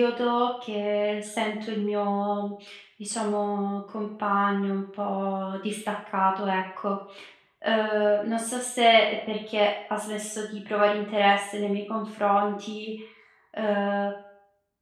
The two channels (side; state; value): both; identical; correlation 1.00